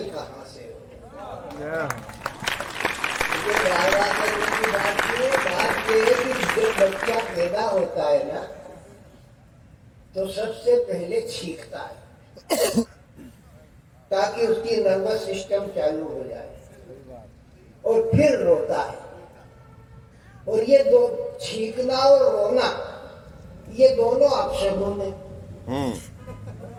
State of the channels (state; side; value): identical; both; correlation 1.00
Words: कहाँ से हो। बात ये है कि जब बच्चा पैदा होता है ना तो सबसे पहले छींकता है ताकि उसकी नर्वस सिस्टम चालू हो जाए और फिर रोता है। और ये दो छींकना और रोना ये दोनों अपशगुन है।